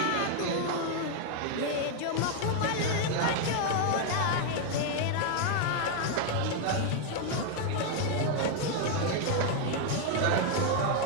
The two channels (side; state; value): both; different; correlation 0.00